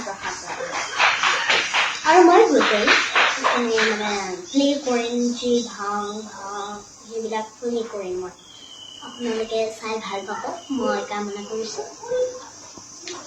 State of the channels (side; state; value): both; identical; correlation 1.00